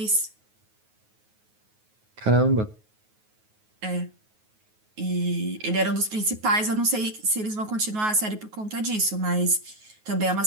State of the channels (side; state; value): left; late; 9.4 ms